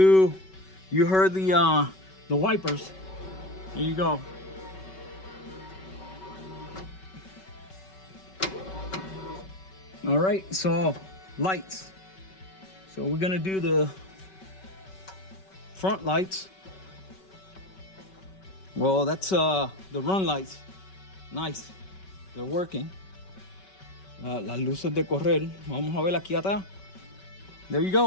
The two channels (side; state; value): right; late; 5.3 ms